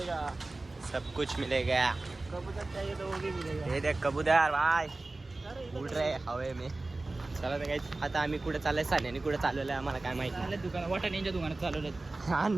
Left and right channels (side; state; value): left; quieter; 3.1 dB